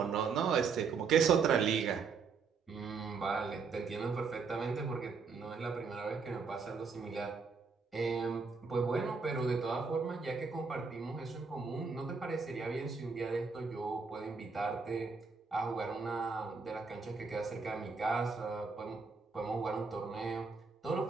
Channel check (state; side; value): quieter; left; 5.1 dB